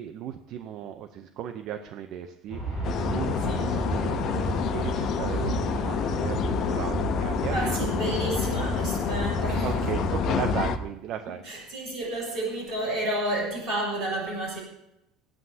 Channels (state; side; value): normal; both; correlation 0.44